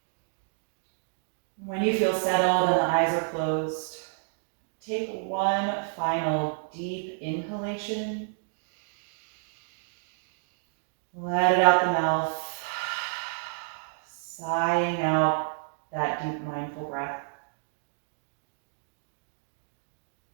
When you feel settled and the eyes are closed, take one final deep inhalation. Let it out the mouth, sighing out that deep mindful breath.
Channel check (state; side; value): silent; left; digital silence